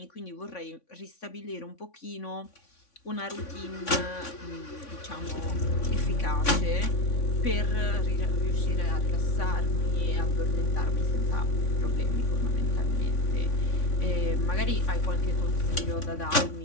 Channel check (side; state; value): right; late; 3.5 ms